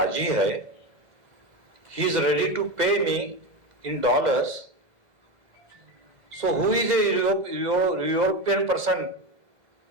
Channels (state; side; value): late; left; 2.0 ms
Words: है, he is ready to pay me in dollars, so who is a European person